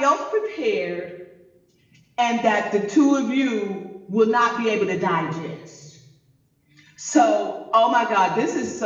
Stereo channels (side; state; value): both; identical; correlation 1.00